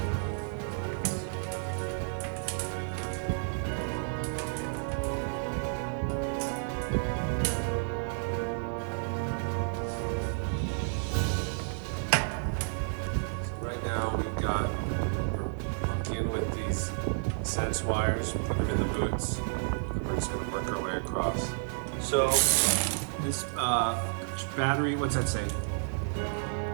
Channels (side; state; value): left; silent; digital silence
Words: Right now we're monkeying with these sense wires, putting them in the boots, and we're just gonna work our way across. So this battery, what's that say?